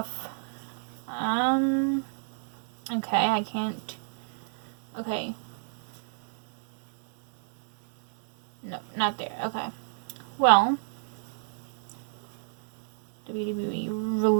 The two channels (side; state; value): left; silent; digital silence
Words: Okay, I can't. Okay. No, not there. Okay. Well, WWE